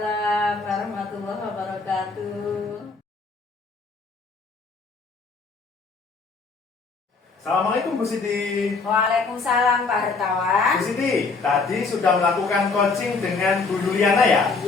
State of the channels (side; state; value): right; quieter; 4.3 dB